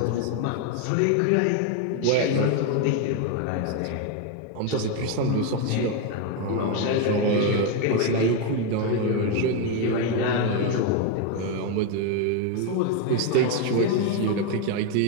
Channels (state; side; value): different; both; correlation 0.02